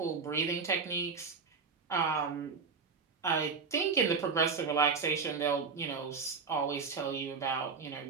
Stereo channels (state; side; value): quieter; left; 5.1 dB